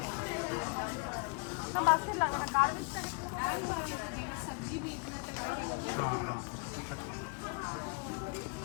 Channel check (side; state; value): right; quieter; 33.7 dB